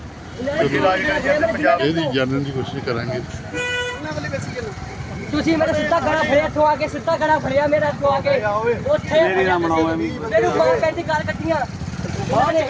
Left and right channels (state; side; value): identical; both; correlation 1.00